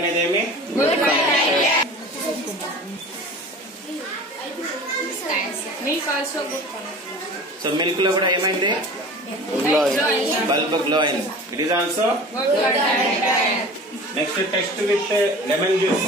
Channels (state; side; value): normal; both; correlation 0.39